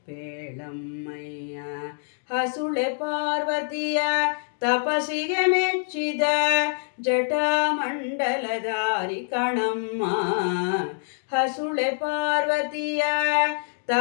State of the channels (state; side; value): silent; right; digital silence